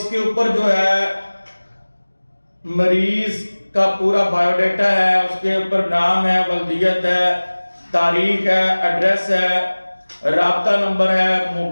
کے اوپر جو ہے مریض کا پورا بایو ڈیٹا ہے، اس کے اوپر نام ہے، ولدیت ہے، تاریخ ہے، ایڈریس ہے، رابطہ نمبر ہے،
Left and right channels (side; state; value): both; inverted; correlation -1.00